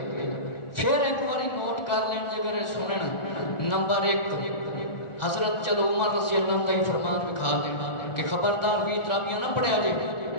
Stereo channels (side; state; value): right; late; 1.4 ms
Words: پھر ایک باری نوٹ کر لیں جگر سنن نمبر 1 حضرت چلو عمر رضی اللہ عنہ فرمان دکھا دینا کہ خبردار 20 تراویاں نہ پڑھیا جے